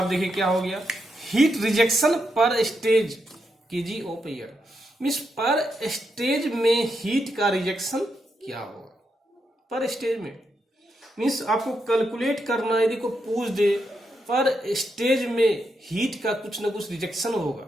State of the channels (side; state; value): both; normal; correlation 0.83